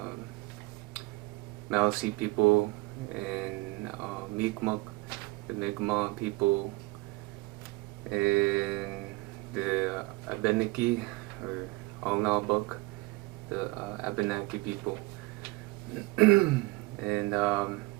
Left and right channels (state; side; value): quieter; left; 22.2 dB